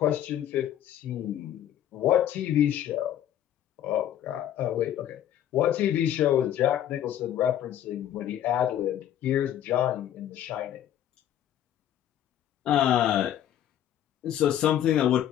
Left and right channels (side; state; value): right; quieter; 11.2 dB